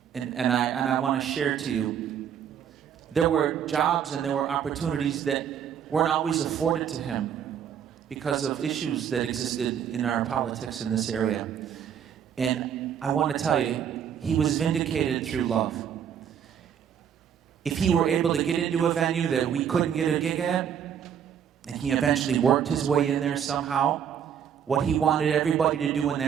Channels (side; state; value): left; quieter; 8.6 dB